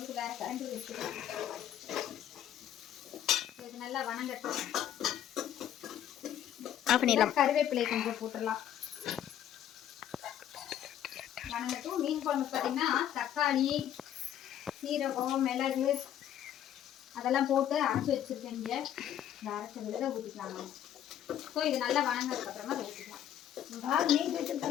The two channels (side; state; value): right; quieter; 10.7 dB